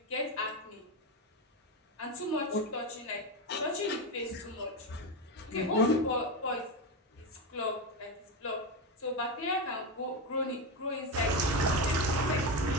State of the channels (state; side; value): normal; both; correlation 0.14